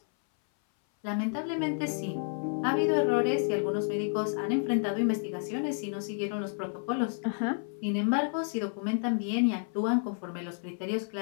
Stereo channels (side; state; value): right; silent; 58 dB below the other